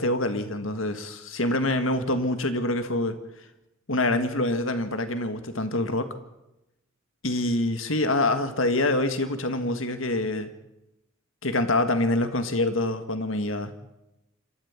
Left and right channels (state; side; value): normal; both; correlation 0.10